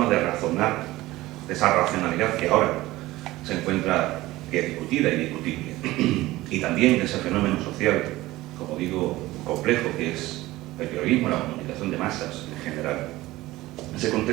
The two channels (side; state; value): left; quieter; 17.9 dB